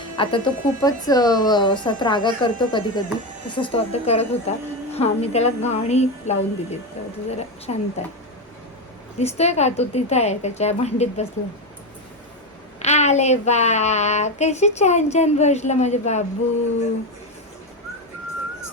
आता तो खूपच असा त्रागा करतो कधी कधी, तसंच तो आता करत होता. हां, मी त्याला गाणी लावून दिली तर तो जरा शांत आहे. दिसतोय का तो तिथं आहे, त्याच्या भांडीत बसला. आले बा, कशी छान छान बसला माझे बाबू.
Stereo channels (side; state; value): both; normal; correlation 0.14